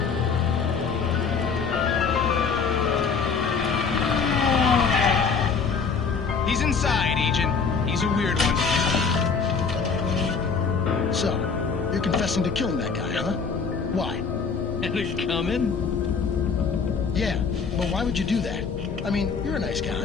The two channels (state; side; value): quieter; right; 5.5 dB